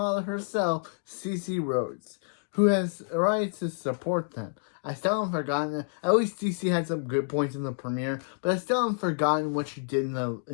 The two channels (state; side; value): silent; right; digital silence